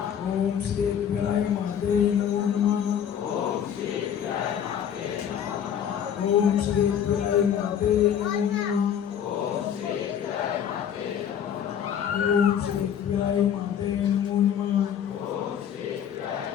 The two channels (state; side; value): quieter; right; 8.8 dB